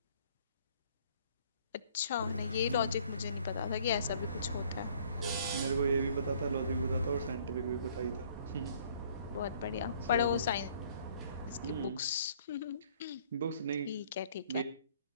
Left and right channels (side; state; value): both; inverted; correlation -0.58